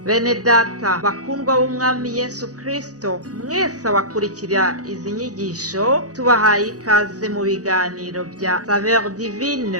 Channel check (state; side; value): late; left; 0.67 ms